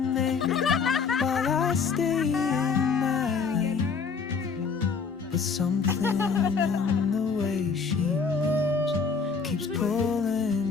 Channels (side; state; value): right; quieter; 5.4 dB